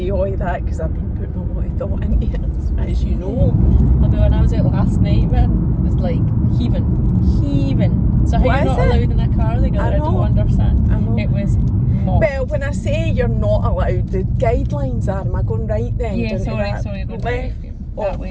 all of that because I've been putting a lot of thought into it, as you know. Although when I was out last night, man, it was like heaving. So how What you're is not it? allowed in a car together, I don't know. understand. I know. It was mobbed. Well, when I say you're not allowed, the guidelines are, am I going right then? Yeah, Into sorry, that? go Left. that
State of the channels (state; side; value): identical; both; correlation 1.00